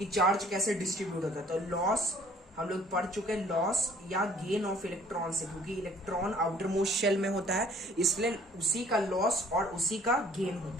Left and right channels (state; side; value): normal; both; correlation 0.56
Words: चार्ज कैसे डिस्ट्रीब्यूट होता है। तो लॉस हम लोग पढ़ चुके हैं, लॉस या गेन ऑफ इलेक्ट्रॉन से, क्योंकि इलेक्ट्रॉन आउटर मोस्ट शेल में होता है, इसलिए उसी का लॉस और उसी का गेन